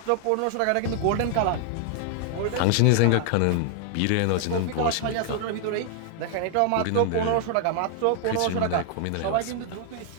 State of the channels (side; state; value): both; different; correlation 0.00